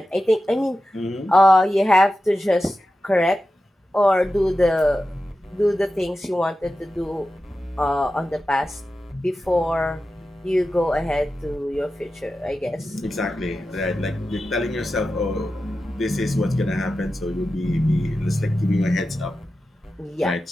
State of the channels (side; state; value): both; normal; correlation 0.92